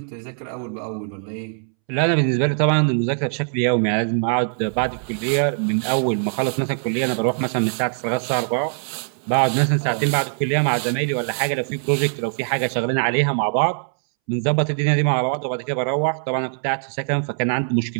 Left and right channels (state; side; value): silent; left; 64 dB below the other